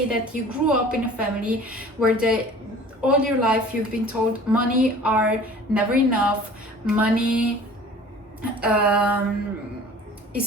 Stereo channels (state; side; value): normal; both; correlation 0.46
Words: that you grew up in a family where all your life you've been told money are never enough, money